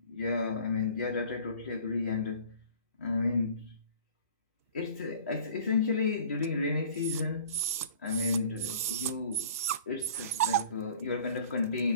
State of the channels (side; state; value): both; inverted; correlation -0.47